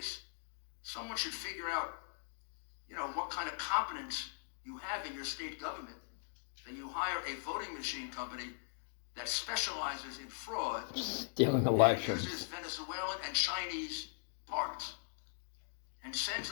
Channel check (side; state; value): right; silent; digital silence